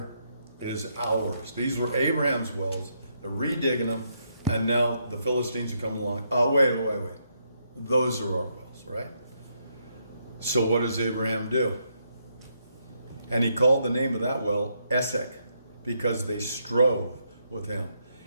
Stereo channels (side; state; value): both; inverted; correlation -0.77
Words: is ours. These were Abraham's wells. They're redigging them, and now the Philistines are coming along. Oh, wait. Those are our wells, right? So what does Abraham do? And he called the name of that well Esek, because they strove with him.